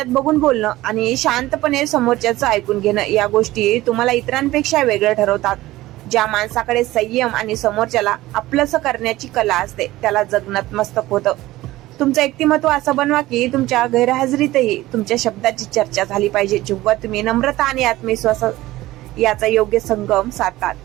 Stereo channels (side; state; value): left; quieter; 17.2 dB